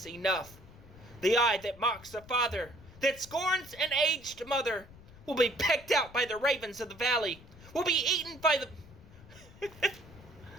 enough. The eye that mocks a father, that scorns an aged mother, will be pecked out by the ravens of the valley, will be eaten by the...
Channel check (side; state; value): left; noise; rumble, 20 dB below the sound